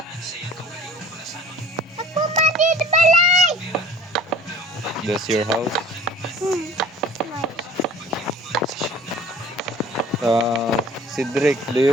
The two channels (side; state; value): both; normal; correlation 0.48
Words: Ako man ni di balay. That's your house? Cedric, do